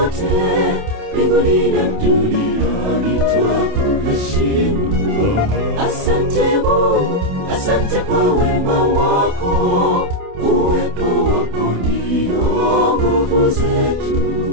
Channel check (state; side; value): late; left; 28 ms